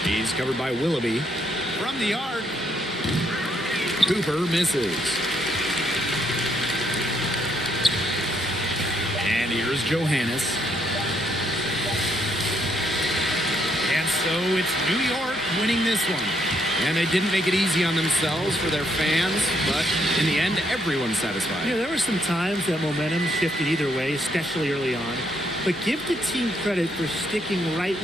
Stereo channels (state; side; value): normal; both; correlation 0.73